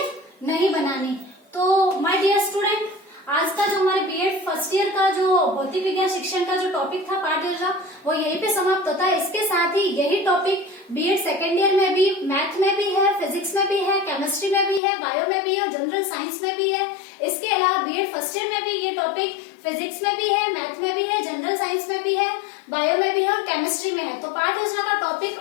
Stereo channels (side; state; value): right; drops out; at 14.8 s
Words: नहीं बनानी। तो माय डियर स्टूडेंट, आज का जो हमारे बीएड फर्स्ट ईयर का जो भौतिक विज्ञान शिक्षण का जो टॉपिक था पाठ योजना, वो यहीं पे समाप्त होता है। इसके साथ ही यही टॉपिक बीएड सेकेंड ईयर में भी, मैथ में भी है, फिजिक्स में भी है, केमिस्ट्री में भी है, बायो में भी है और जनरल साइंस में भी है। इसके अलावा बीएड फर्स्ट ईयर में भी ये टॉपिक फिजिक्स में भी है, मैथ में भी है, जनरल साइंस में भी है, बायो में भी है और केमिस्ट्री में है। तो पाठ योजना का topic